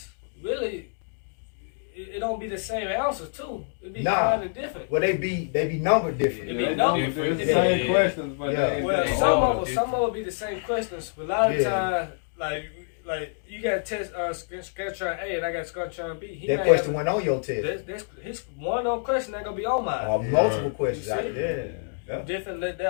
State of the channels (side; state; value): right; silent; digital silence